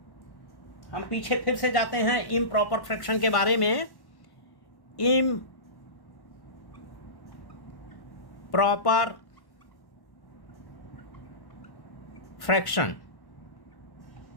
हम पीछे फिर से जाते हैं improper fraction के बारे में। Proper fraction.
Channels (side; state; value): right; late; 1.1 ms